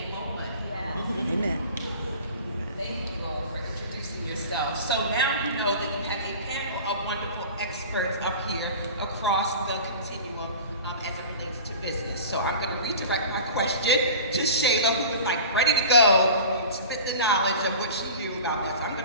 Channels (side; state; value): both; inverted; correlation -0.37